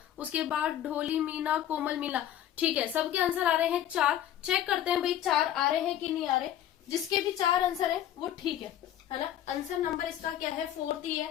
उसके बाद ढोली, मीना, कोमल, मीना। ठीक है, सबके आंसर आ रहे हैं 4। चेक करते हैं भाई 4 आ रहे हैं कि नहीं आ रहे। जिसके भी 4 आंसर है वो ठीक है। है ना। आंसर नंबर इसका क्या है, 4 ही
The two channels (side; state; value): right; quieter; 11.5 dB